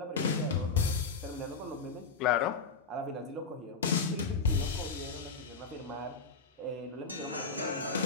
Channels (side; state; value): right; quieter; 4.5 dB